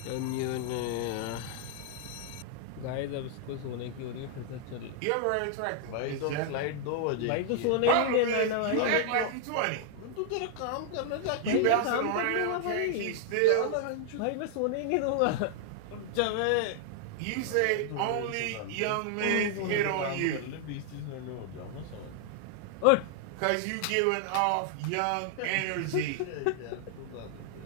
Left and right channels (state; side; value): different; both; correlation -0.01